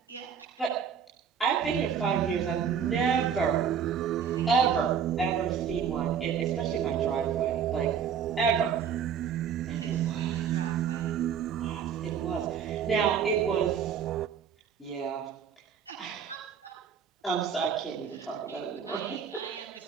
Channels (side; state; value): left; quieter; 7.6 dB